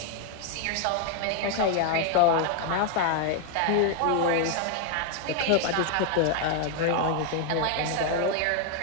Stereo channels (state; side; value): different; both; correlation 0.01